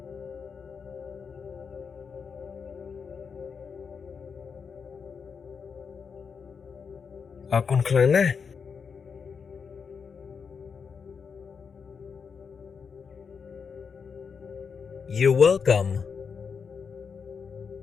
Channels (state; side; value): quieter; right; 6.0 dB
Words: អរគុណខ្លាំងណាស់ You're welcome.